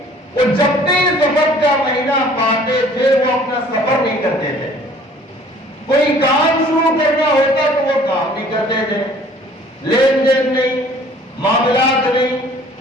جب بھی سفر کا مہینہ پاتے تھے وہ اپنا سفر نہیں کرتے تھے، کوئی کام شروع کرنا ہوتا تو وہ کام نہیں کرتے تھے، لین دین نہیں، معاملات نہیں،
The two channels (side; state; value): both; normal; correlation 0.53